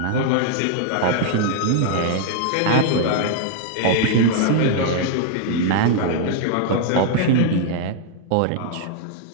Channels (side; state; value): both; different; correlation 0.00